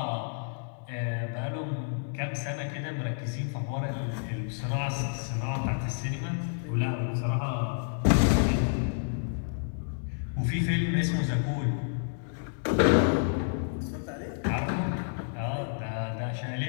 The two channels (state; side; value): silent; right; 58 dB below the other